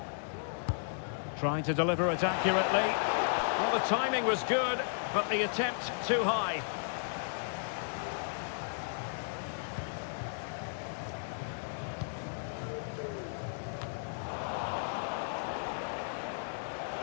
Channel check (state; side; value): silent; right; digital silence